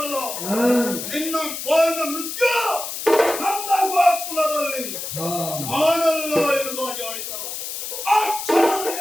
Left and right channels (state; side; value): noise; left; hiss, 6 dB below the sound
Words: ಹಾ ನಿನ್ನ ಪಾಲಿನ ಮೃತ್ಯು ನನ್ನ ಗೋಕುಲದಲ್ಲಿ ಹಾ ನಾನಲ್ಲ ಎನ್ನುವುದಾಗಿ ಆಡಿತಲ್ಲ. ಆ